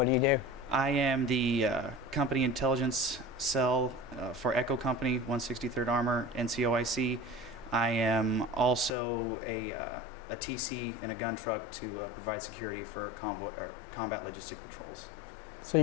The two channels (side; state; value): right; drops out; at 8.9 s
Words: do you do? I am the company intelligence cell for Echo Company, 163rd Armor, NCOIC. I am also a TC in a gun truck to provide security for combat logistic patrols. So